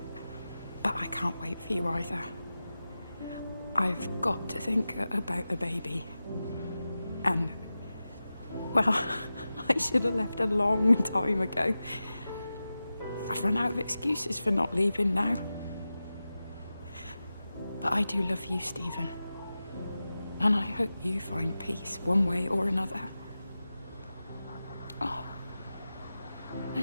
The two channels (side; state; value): both; inverted; correlation -0.94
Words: But I can't wait for you either. I've got to think about the baby. And, well, I should have left a long time ago. I've run out of excuses for not leaving now. But I do love you, Stephen. And I hope you find peace one way or another. Oh,